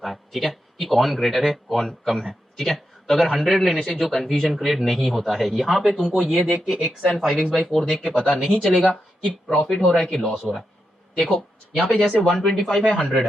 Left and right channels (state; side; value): normal; both; correlation 0.86